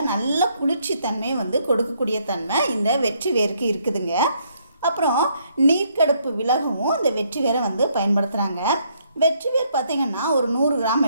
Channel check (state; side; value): inverted; both; correlation -0.71